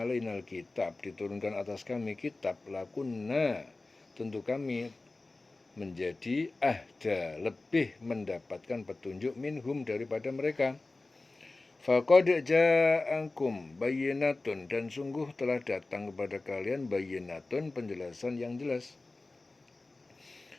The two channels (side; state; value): right; quieter; 3.2 dB